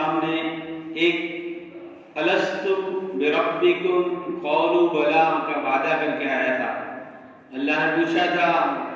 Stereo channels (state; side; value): identical; both; correlation 1.00